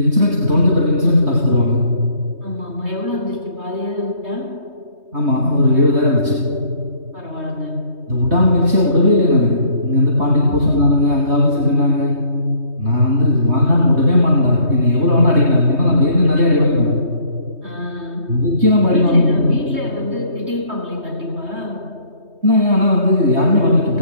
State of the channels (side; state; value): left; late; 3.2 ms